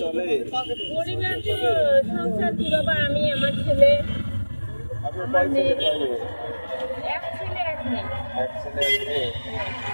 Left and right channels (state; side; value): inverted; both; correlation -1.00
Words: চলে? পরিবার তো সংসার কি বাবা, আমি আমার ছেলে, আপনার আমার কয় ছেলে মেয়ে, কয় মেয়ে? এক ছেলে এক মেয়ে। এক ছেলে এক মেয়ে।